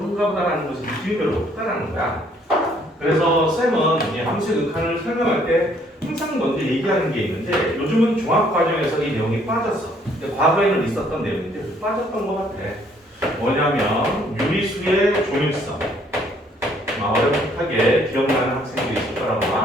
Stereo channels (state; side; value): normal; both; correlation 0.64